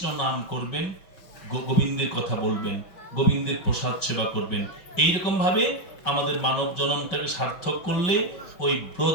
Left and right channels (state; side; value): late; right; 5.3 ms